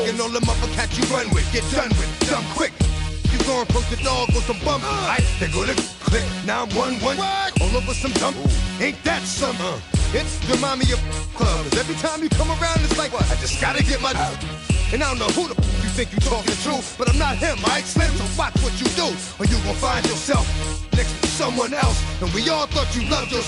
And all the motherfuckers you run with, get done with, dumb quick. You going from the dog or some bum? Alright, they go to click 911. All over some dump. Ain't that something? It remind me of clubs. Every time you come around, it's like, I just gotta get my. And I don't know who the you think you talking to, but I'm not him, alright, Slim? So watch what you do, or you gon' find yourself next to someone else. And we all thought you loved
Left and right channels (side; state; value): both; identical; correlation 1.00